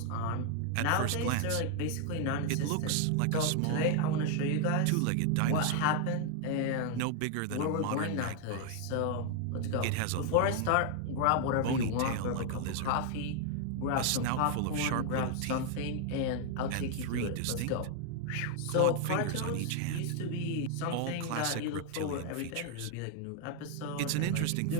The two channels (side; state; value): both; different; correlation 0.00